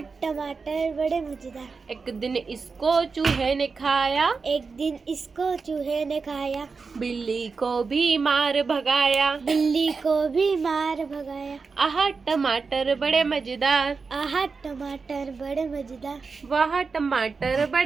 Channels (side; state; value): left; quieter; 4.7 dB